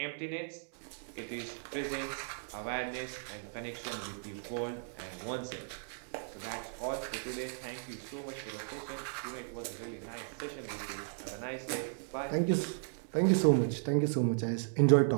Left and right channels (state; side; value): silent; left; digital silence